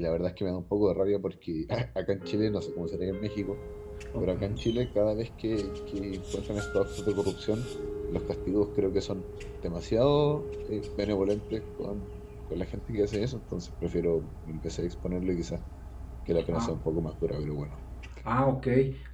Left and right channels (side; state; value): both; identical; correlation 1.00